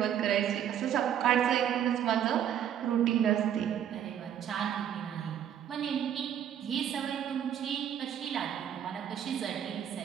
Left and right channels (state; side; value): quieter; left; 9.8 dB